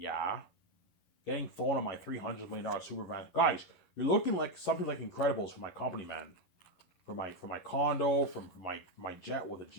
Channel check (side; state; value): right; late; 11 ms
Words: Getting thrown on my $300 million super van. Guys, you're looking like something like Incredibles for my company, man. For my condo, from my jet with a